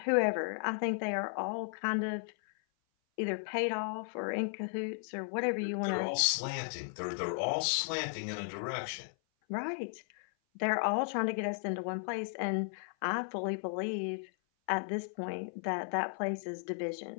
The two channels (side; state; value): right; silent; 54 dB below the other